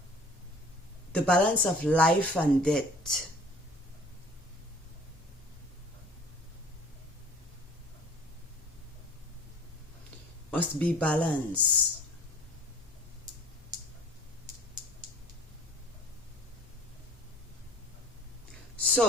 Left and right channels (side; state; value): both; normal; correlation 0.50